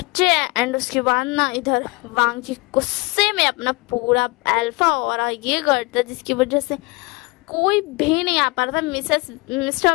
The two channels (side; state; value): right; quieter; 25.5 dB